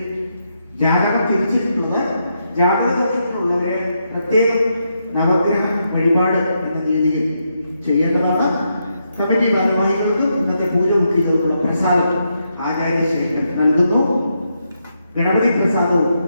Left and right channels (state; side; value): inverted; both; correlation -0.81